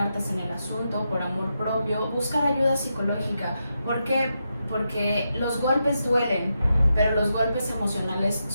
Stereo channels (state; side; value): inverted; both; correlation -0.85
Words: en el asunto por amor propio, buscar ayuda psicológica. ¿Por qué? Porque los golpes duelen, pero los golpes emocionales